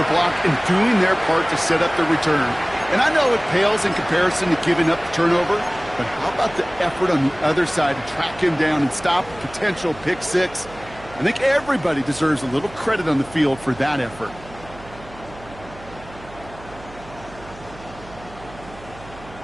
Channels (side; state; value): right; noise; hum, 19 dB below the sound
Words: block and doing their part to set up the return. And I know it pales in comparison to giving up the turnover, but how about the effort on the other side to track him down and stop a potential pick six? I think everybody deserves a little credit on the field for that effort.